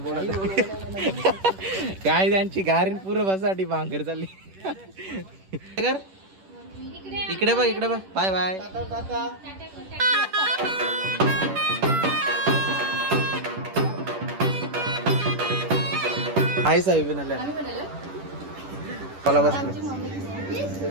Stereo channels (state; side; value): late; left; 10 ms